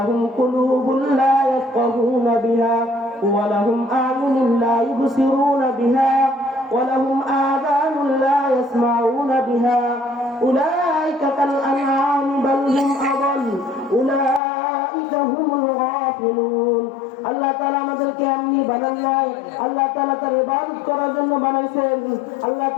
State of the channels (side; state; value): right; drops out; at 14.4 s